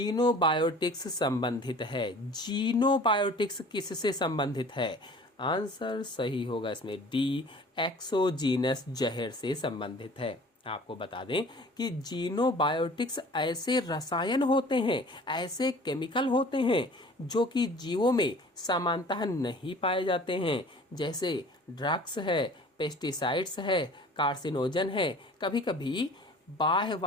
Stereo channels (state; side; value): normal; both; correlation 0.46